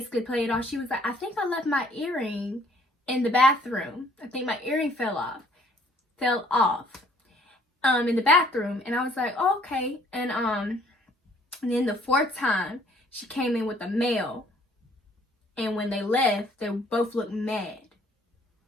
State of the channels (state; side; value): normal; both; correlation 0.60